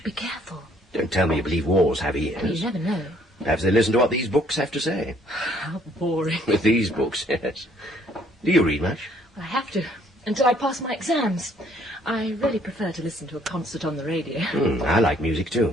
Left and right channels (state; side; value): normal; both; correlation 0.63